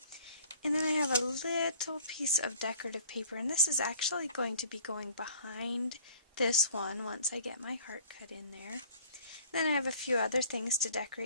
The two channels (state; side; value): inverted; both; correlation -0.53